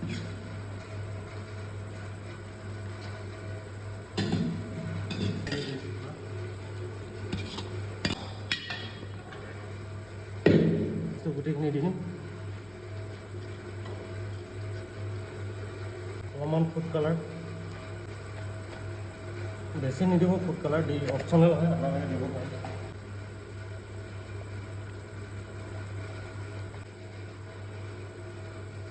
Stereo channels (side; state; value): left; noise; rumble, 24 dB below the sound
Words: গোটেইখিনি দি দিম। অলপমান ফুড কালাৰ, বেছি নিদিব ফুড কালাৰ, দি অপশ্যনেল হয়, আপোনালোকে দিব পাৰে।